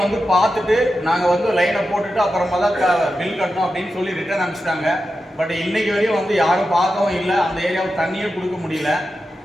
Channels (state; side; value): normal; both; correlation 0.90